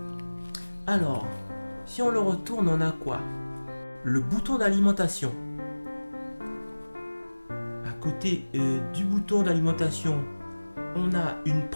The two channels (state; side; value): inverted; both; correlation -1.00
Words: Alors, si on le retourne, on a quoi? Le bouton d'alimentation. À côté du bouton d'alimentation, on a une